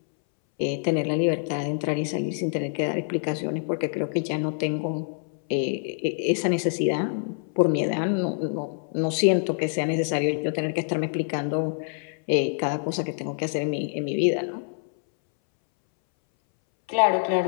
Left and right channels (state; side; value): silent; right; 61 dB below the other